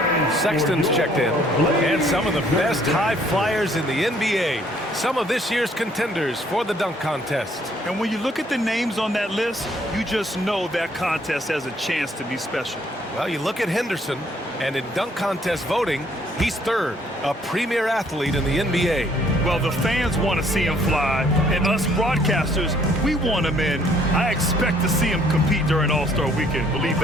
Sexton's checked in. And some of the best high flyers in the NBA. Some of this year's contenders for the dunk contest. And when you look at the names on that list, you just know that contest has a chance to be special. Well, you look at Henderson, and in dunk contest voting, he's third, a premier athlete in the NBA. Well, the fans want to see him fly, and us broadcasters, we want him in. I expect to see him compete during All-Star Weekend, believe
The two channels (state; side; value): normal; both; correlation 0.63